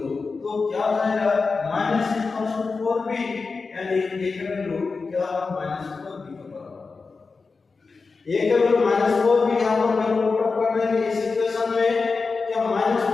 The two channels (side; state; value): right; quieter; 4.4 dB